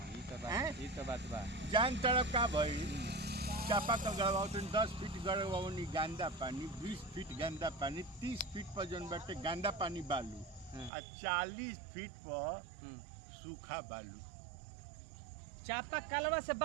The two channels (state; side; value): drops out; left; at 10.9 s